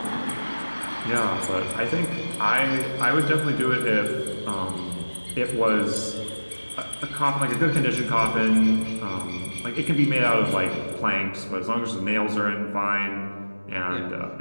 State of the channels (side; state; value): both; inverted; correlation -1.00